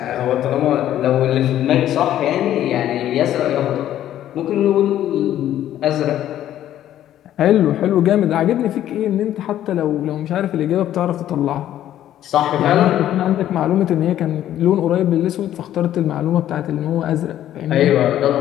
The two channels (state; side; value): quieter; right; 12.0 dB